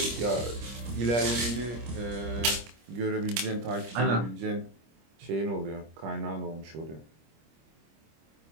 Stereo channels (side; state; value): left; late; 25 ms